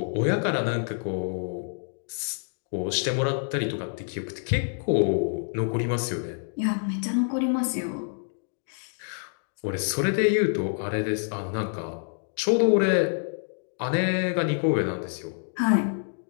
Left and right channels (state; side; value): silent; right; digital silence